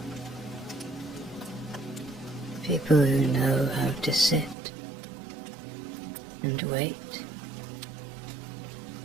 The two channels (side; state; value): left; drops out; at 4.5 s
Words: People who know how to sit and wait